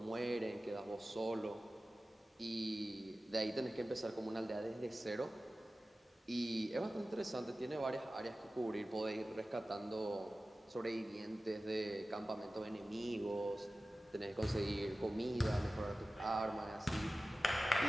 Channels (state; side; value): normal; both; correlation 0.96